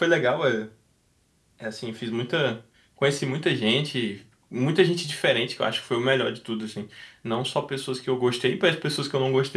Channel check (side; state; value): both; identical; correlation 1.00